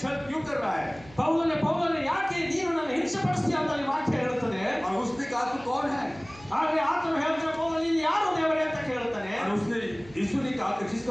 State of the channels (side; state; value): right; noise; hum, 22 dB below the sound